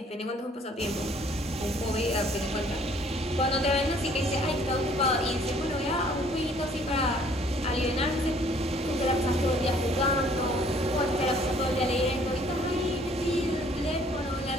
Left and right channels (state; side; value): normal; both; correlation 0.59